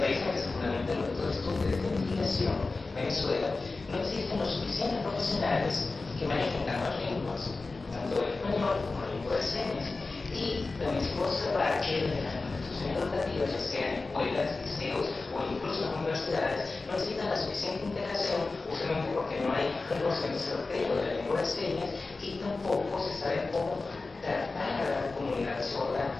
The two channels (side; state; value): right; quieter; 3.7 dB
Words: en el que se fundamentan los métodos de estudio de investigación, Venezuela, no existen los suficientes profesionales que manejen ambas lenguas, tanto el español como la lengua de señas. Y también se puede observar que desde las instituciones educativas, ya sean escuelas, liceos o incluso las universidades, no existen la suficiente integración, justamente porque no hay un conocimiento certero de la lengua de señas y tampoco se sabe cómo tratar a la comunidad sorda